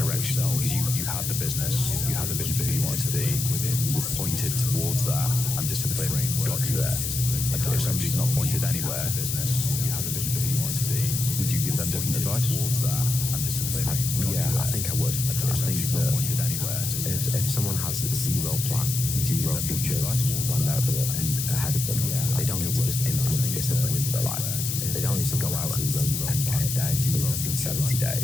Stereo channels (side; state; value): left; noise; hiss, 3 dB below the sound